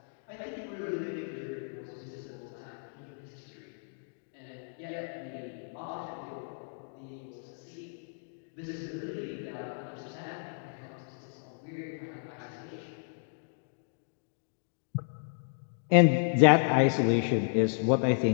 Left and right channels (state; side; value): silent; right; digital silence